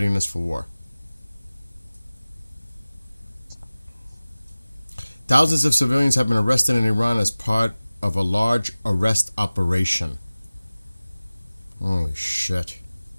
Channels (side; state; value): both; inverted; correlation -0.98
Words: for war. Thousands of civilians have been arrested in Iran as part of a large arrest operation. Holy shit.